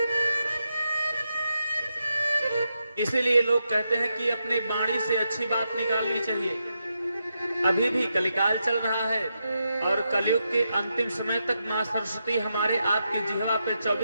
इसीलिए लोग कहते हैं कि अपने वाणी से अच्छी बात निकालनी चाहिए। अभी भी कलिकाल चल रहा है और कलयुग के अंतिम समय तक मां सरस्वती हमारे आपकी जिह्वा पे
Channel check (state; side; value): inverted; both; correlation -0.85